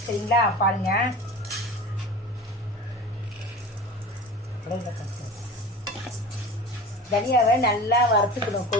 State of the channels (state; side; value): normal; both; correlation 0.35